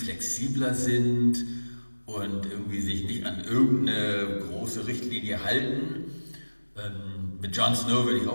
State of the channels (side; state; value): both; inverted; correlation -1.00